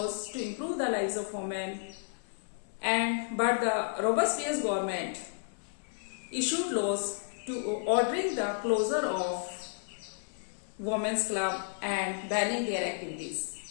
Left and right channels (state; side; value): silent; right; 56 dB below the other